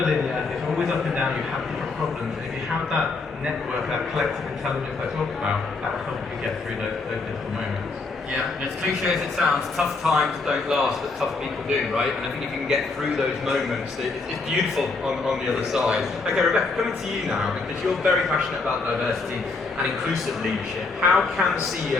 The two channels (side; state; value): right; quieter; 4.0 dB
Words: linear, it's always up and down, you have different problems. And if you have that network, that collective intelligence I talked about, that will help you get through those difficult moments. Yeah, and as cliche as it sounds, tough times don't last, but tough people do, right? And I think if you can get through those moments, it's beautiful on the other side. Okay, Rebecca, coming to you now, because you're very passionate about diversity and inclusive leadership. How can